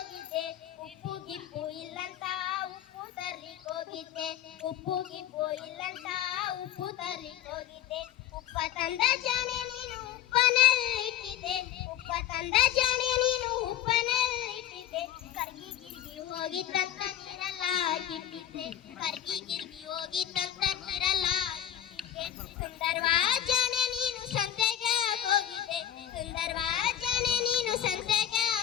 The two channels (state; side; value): quieter; right; 11.1 dB